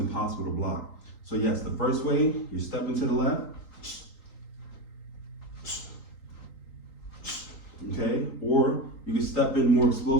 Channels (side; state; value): right; late; 3.9 ms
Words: to block. So yes, the first way, you're stepping to the left, okay? Or you can step in more